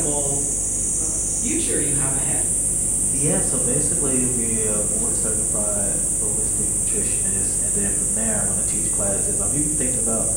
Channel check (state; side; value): noise; left; hum, 8 dB below the sound